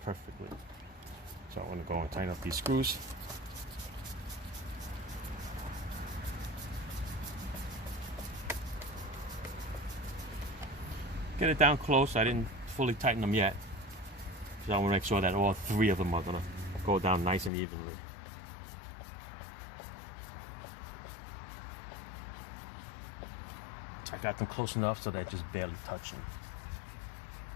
perfectly. So I'm going to go and tighten up these screws. Get it down close. I didn't fully tighten them yet, because I want to make sure that all 3 of them are going to go down nice and evenly. I got them close enough so they're just barely touching.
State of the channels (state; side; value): drops out; right; at 17.5 s